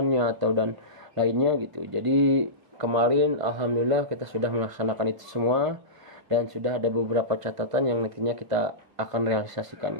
atau dan lainnya gitu. Jadi kemarin alhamdulillah kita sudah melaksanakan itu semua dan sudah ada beberapa catatan yang nantinya kita akan realisasikan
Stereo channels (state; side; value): late; left; 1.5 ms